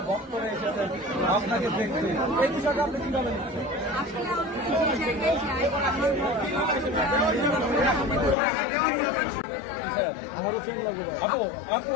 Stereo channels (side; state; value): right; drops out; at 8.3 s